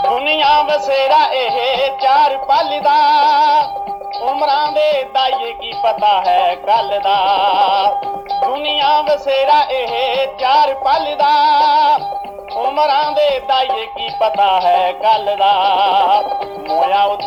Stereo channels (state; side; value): identical; both; correlation 1.00